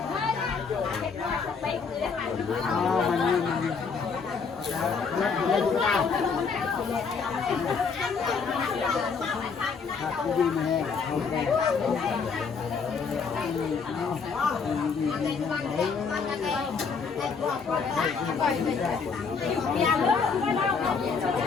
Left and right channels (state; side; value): quieter; right; 5.4 dB